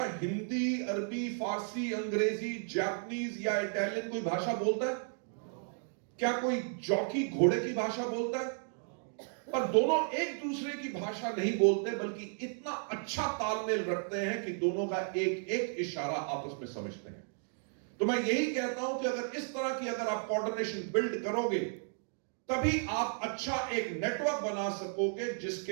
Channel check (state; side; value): silent; left; 55 dB below the other